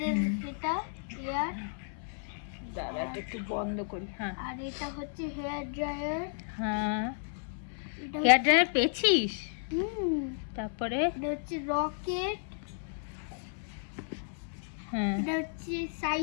এটা এয়ার। দাঁড়া এটা একটু বন্ধ করি। হ্যাঁ আর এটা হচ্ছে হেয়ার ড্রায়ার। হ্যাঁ এটা হেয়ার ড্রায়ার পেয়েছিস? হুম, তারপরে এটা হচ্ছে রকেট। হ্যাঁ এটা হচ্ছে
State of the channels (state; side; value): silent; right; 56 dB below the other